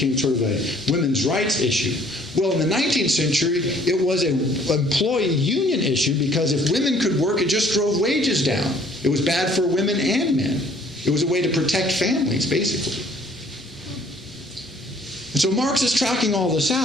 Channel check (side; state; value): both; normal; correlation 0.58